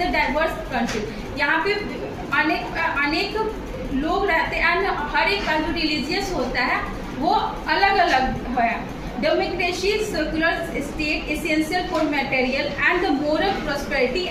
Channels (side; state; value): both; identical; correlation 1.00